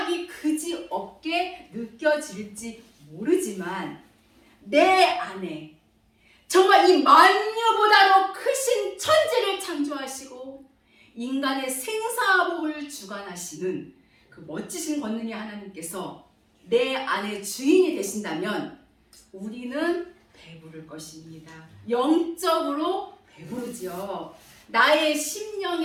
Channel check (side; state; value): both; identical; correlation 1.00